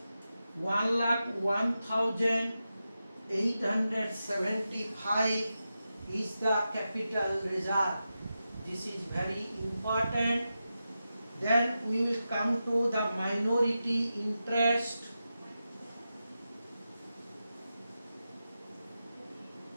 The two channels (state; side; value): inverted; both; correlation -0.90